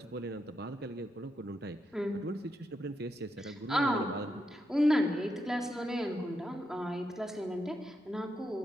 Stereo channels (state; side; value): normal; both; correlation 0.83